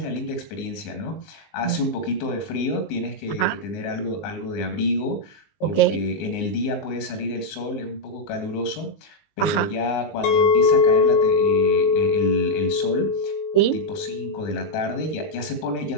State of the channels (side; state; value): right; late; 19 ms